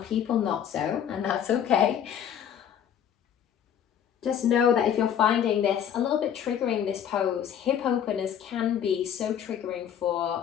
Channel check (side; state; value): right; quieter; 9.1 dB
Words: people not so, and that's okay. Just know that if you're finding this a little bit triggering, this pose, hip openers can be so triggering for